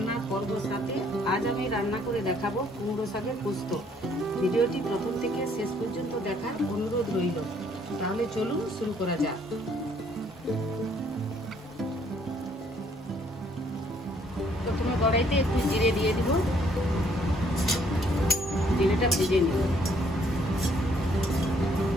पर्व साथे आज आमी रान्ना करे देखाबो कुमड़ो शाकेर पोस्तो। भिडियोटी प्रथम थेके शेष पर्यन्त देखार अनुरोध रइल। ताहले चलुन शुरू करा जाक। प्रथमे कड़ाइते एकटु जिरे दिए दिब, जिरेटा भेजे निब।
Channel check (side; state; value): both; normal; correlation 0.65